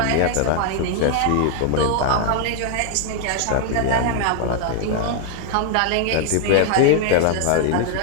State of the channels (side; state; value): both; different; correlation 0.00